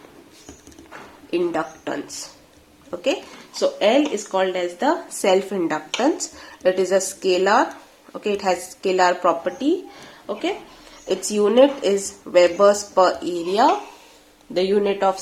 Okay, so L is called as the self-inductance. It is a scalar. Okay, it has scalar property. Okay, its unit is Webers per area. The unit of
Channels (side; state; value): both; identical; correlation 1.00